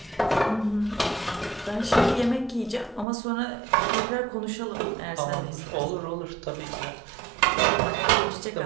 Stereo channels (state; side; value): drops out; left; at 3.1 s